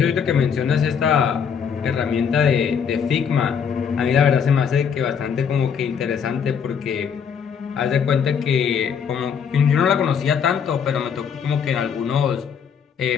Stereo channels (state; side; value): quieter; right; 7.1 dB